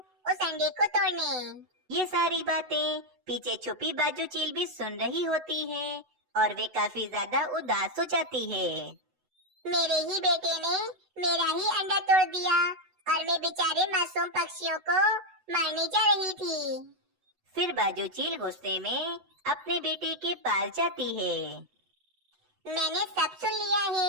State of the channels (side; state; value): left; late; 8.0 ms